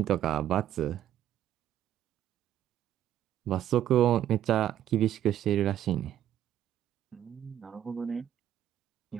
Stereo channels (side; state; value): left; quieter; 11.4 dB